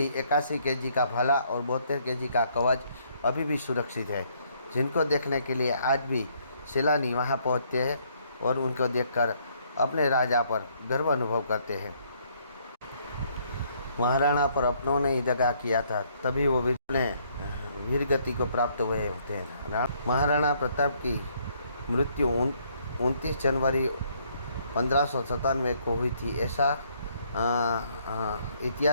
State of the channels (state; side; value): inverted; both; correlation -0.67